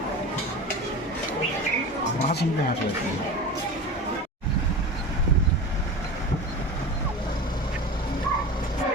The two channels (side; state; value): both; normal; correlation 0.30